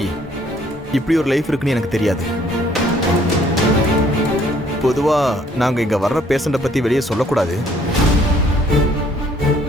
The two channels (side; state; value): both; normal; correlation 0.63